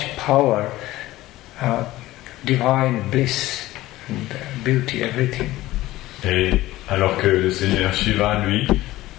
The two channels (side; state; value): right; quieter; 16.8 dB